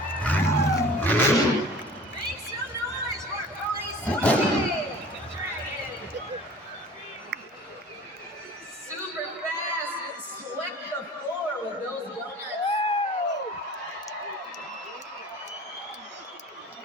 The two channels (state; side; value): normal; both; correlation 0.44